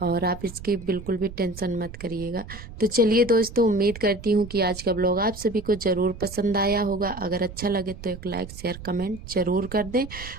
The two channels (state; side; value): noise; right; rumble, 14 dB below the sound